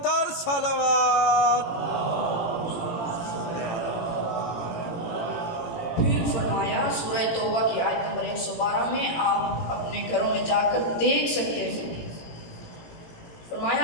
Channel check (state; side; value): late; right; 18 ms